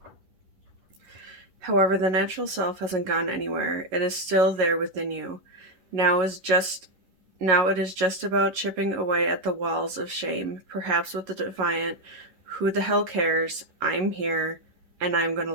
However, the natural self hasn't gone anywhere. It is still there within you. Now it is just about chipping away at the walls of shame, perhaps with the defiant, who the hell cares? I'm here, and I'm going to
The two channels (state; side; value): late; left; 11 ms